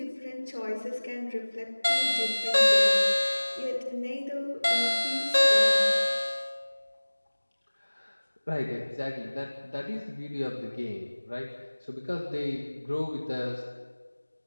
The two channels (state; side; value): inverted; both; correlation -1.00